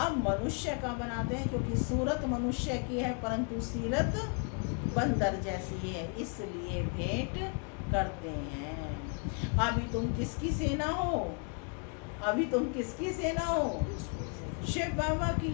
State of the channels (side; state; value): right; quieter; 39.1 dB